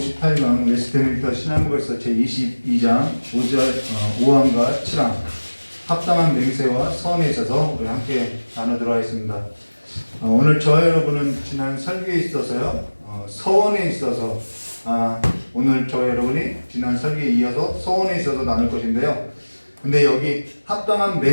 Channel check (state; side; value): inverted; both; correlation -1.00